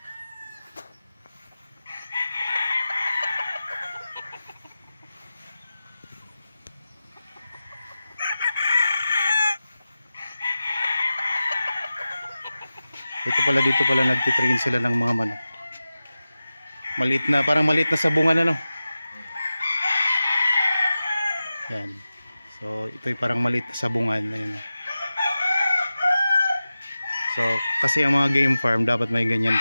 dito pala nagtitrain sila ng mga manok. Maliit na, parang maliit na sabungan ano. Yan. So ito'y parang maliit na sabungan. Ayun. So kasi ang mga game farm dapat may ganyan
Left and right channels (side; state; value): both; inverted; correlation -0.94